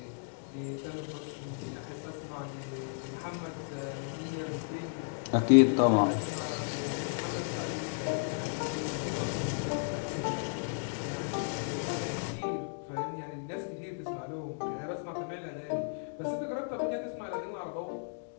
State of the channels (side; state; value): right; silent; digital silence